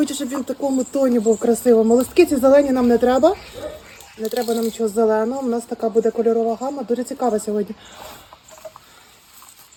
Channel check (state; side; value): identical; both; correlation 1.00